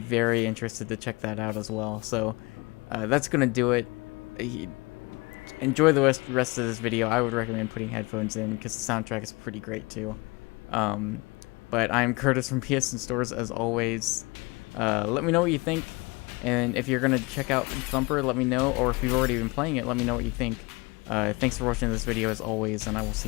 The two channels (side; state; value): right; quieter; 25.7 dB